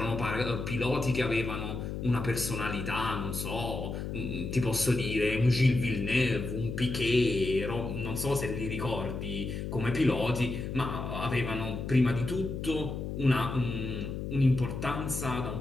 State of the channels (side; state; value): left; noise; hum, 5 dB below the sound